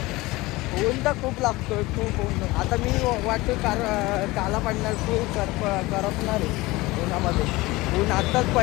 ऊन तर खूप लागतोय, खूप ऊन. आता मी वाटतो काला पडणार, खूप करपणार आहे उन्हामध्ये. ऊन आत्ताच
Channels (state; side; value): quieter; right; 20.7 dB